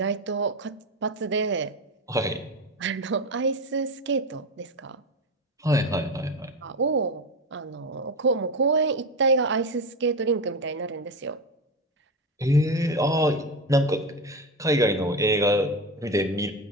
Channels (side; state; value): both; normal; correlation 0.19